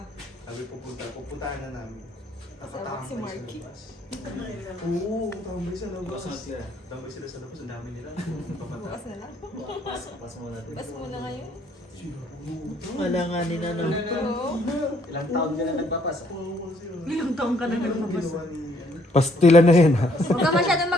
Sabi pupuntahan na namin. Kasama si Marky. Oo, tambay sa labas. Tambay sila sa labas, ang dami nila. Bukas na lang. Bukas muna ngayon. Wala nga nila no. Oo. Ilang taon ka na nagpapasa? Ilang taong ka na Ginawa ni Pastila na yan ha. Huwag ka masyadong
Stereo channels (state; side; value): normal; both; correlation 0.66